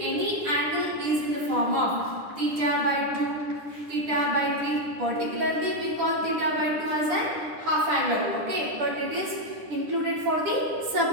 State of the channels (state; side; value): late; left; 10 ms